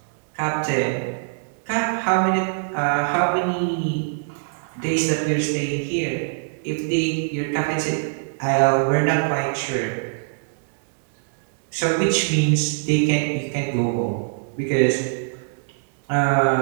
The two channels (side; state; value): left; silent; digital silence